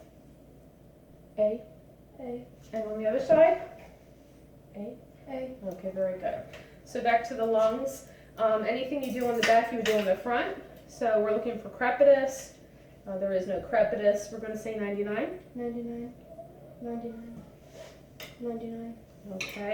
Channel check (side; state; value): both; identical; correlation 1.00